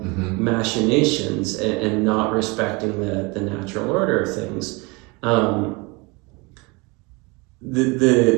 machinations and not respecting the natural order of things.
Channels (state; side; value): quieter; left; 27.2 dB